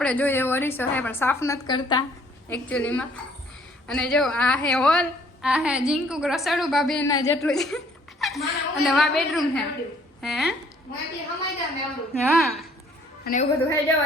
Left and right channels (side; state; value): both; normal; correlation 0.61